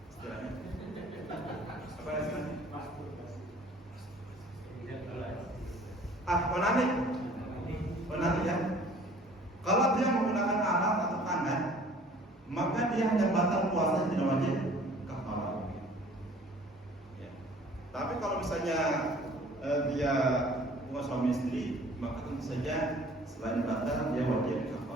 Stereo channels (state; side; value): normal; both; correlation 0.52